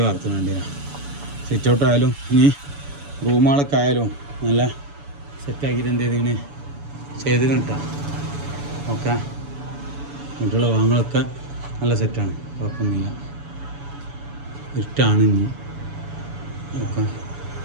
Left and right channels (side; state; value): left; late; 7.0 ms